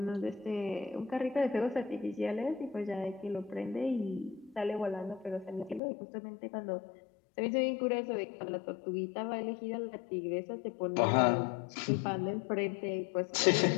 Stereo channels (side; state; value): right; drops out; at 5.8 s